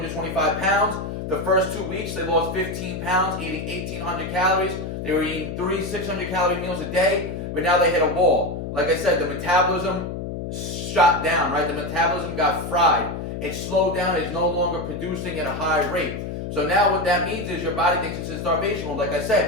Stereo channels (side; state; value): left; noise; hum, 6 dB below the sound